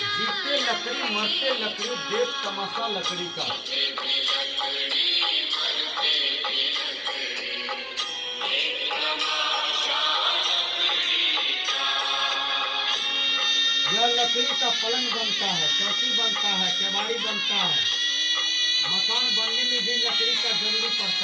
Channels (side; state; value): both; identical; correlation 1.00